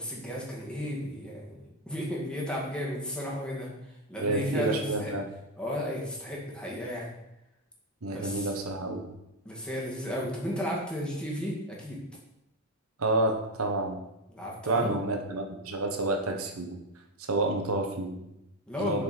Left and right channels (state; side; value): normal; both; correlation 0.09